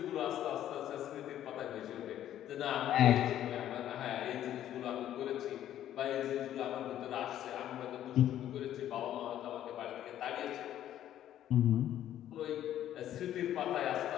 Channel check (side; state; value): right; quieter; 11.7 dB